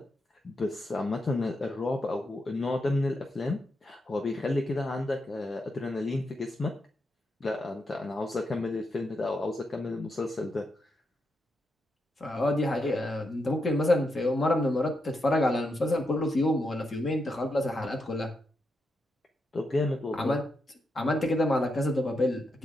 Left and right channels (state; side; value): normal; both; correlation 0.84